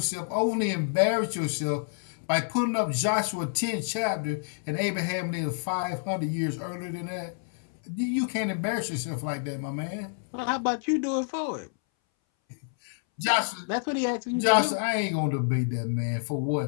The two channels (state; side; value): silent; right; 59 dB below the other